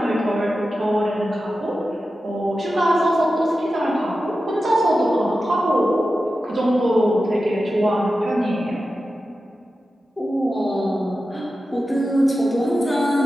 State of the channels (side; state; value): both; normal; correlation 0.92